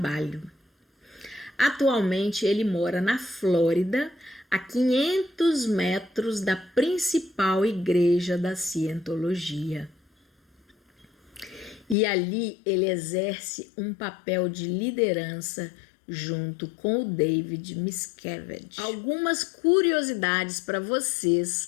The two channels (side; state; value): right; drops out; at 12.0 s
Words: Atualmente ele mora na Flórida, a 500 metros da principal igreja da Cientologia. E ali ele exerce um papel de liderança junto com o David Miscavige. Algumas curiosidades para vocês